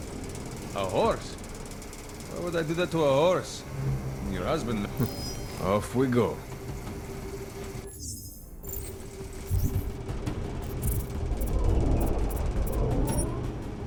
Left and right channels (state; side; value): identical; both; correlation 1.00